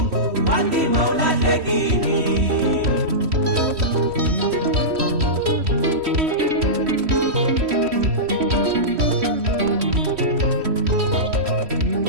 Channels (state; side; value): late; left; 3.1 ms